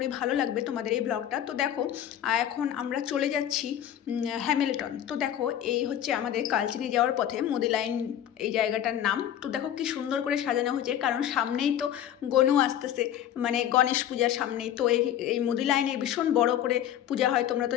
ভালো লাগবে তোমাদের এই ব্লগটা। তো দেখো এখন আমরা চলে যাচ্ছি হ্যামিল্টন। তো দেখো এই হচ্ছে আমাদের কালচিনি যাওয়ার পথে মুদি লাইন, এই জায়গাটার নাম। তো দেখো কি সুন্দর করে সাজানো হয়েছে, কারণ সামনেই তো গনু আসতেছে, মানে গণেশ পূজার সামনেই তো এই মুদি লাইনে ভীষণ বড় করে পূজা হয়, তোমরা তো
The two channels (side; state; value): right; quieter; 10.7 dB